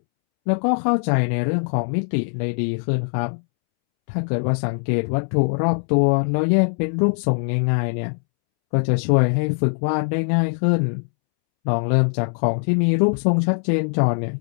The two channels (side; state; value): right; silent; 65 dB below the other